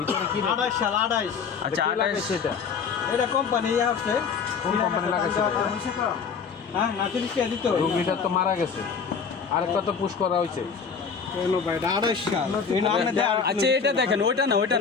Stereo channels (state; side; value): quieter; right; 5.9 dB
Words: কি 28 সাল 28 আচ্ছা লাগাইছে এটা এটা কোম্পানি আছে কোন কোম্পানি লাগাইছে হ্যাঁ নাচুরিস কে দিত রোগীটা তো মারা গেছে আরেকটা তো পুশ করা হয়েছে কেন ভাই 28 সাল এই নামে দেন আচ্ছা এটা দেখেন ওইটা না